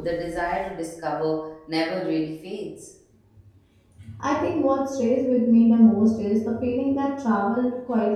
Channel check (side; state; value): both; identical; correlation 1.00